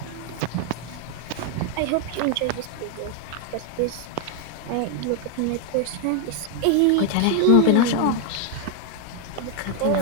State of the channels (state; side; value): different; both; correlation 0.01